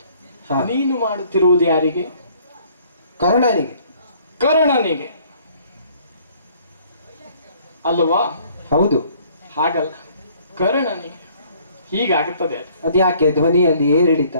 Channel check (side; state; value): both; inverted; correlation -0.59